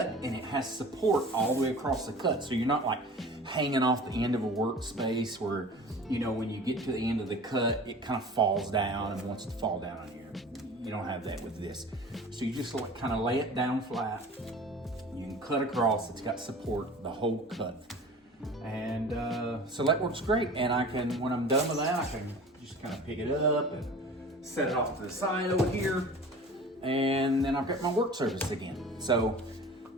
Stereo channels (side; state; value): both; normal; correlation 0.41